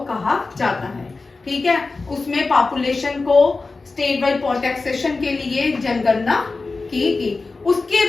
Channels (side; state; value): right; quieter; 3.8 dB